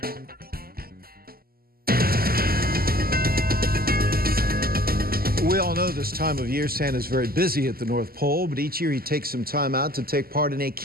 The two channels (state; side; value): late; left; 0.43 ms